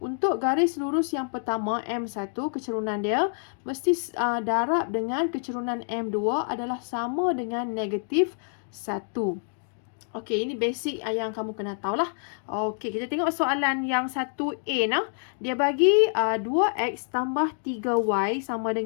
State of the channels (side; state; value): right; silent; digital silence